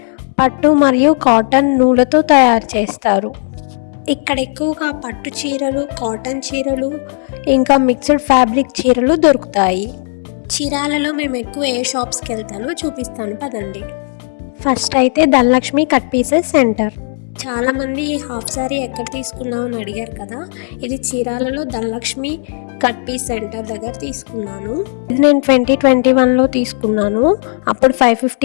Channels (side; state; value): right; silent; 70 dB below the other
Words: పట్టు మరియు కాటన్ నూలుతో తయారు చేస్తారు. ఇక్కడ ఎక్కువగా పట్టు చీరలు, కాటన్ చీరలు, ఇంకా మిక్స్డ్ ఫ్యాబ్రిక్ చీరలు దొరుకుతాయి. చీరాలలో మేము ఎక్కువ ఏ షాప్స్కి వెళ్తానో చూపిస్తాను పదండి. ఫస్ట్ అయితే ధనలక్ష్మి కట్ పీసెస్ సెంటర్. చాలామంది ఈ హాఫ్ శారీ ఎక్కడ తీసుకున్నామని అడిగారు కదా, ఇది చీరాలలో ధనలక్ష్మి కట్ పీస్ సెంటర్ దగ్గర తీసుకున్నాను. ఇది నేను 2021లో తీసుకున్నాను. అప్పుడు